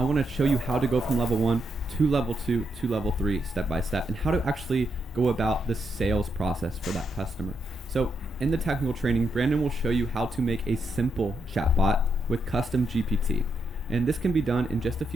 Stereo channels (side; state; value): both; normal; correlation 0.81